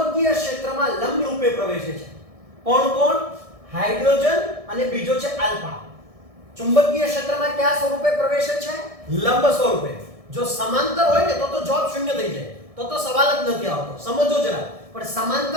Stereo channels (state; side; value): late; left; 1.6 ms